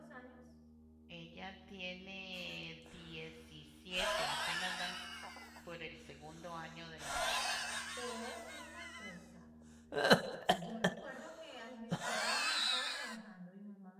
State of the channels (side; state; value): both; identical; correlation 1.00